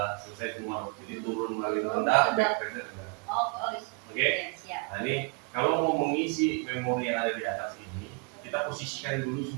selesai semua, jadi turun melalui rendah, reset rendah. Oke. Nah ini kalau mau mengisi memori yang ada di atas ini, kita posisikan dulu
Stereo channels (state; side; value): quieter; left; 31.5 dB